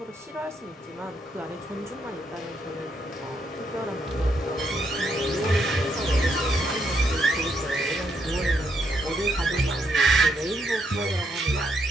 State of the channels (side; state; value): both; normal; correlation 0.76